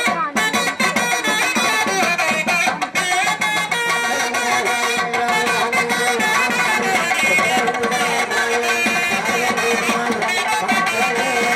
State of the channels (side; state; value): both; identical; correlation 1.00